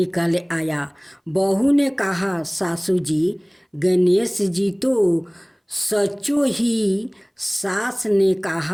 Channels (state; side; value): identical; both; correlation 1.00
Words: आया। बहू ने कहा, सासू जी गणेश जी तो सचो ही। सास ने